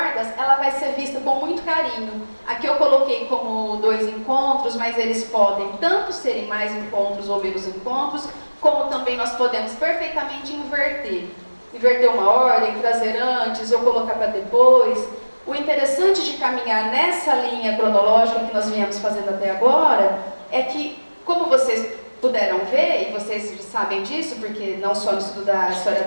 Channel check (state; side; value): inverted; both; correlation -1.00